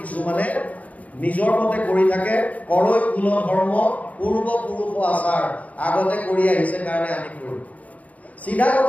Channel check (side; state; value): right; late; 0.071 ms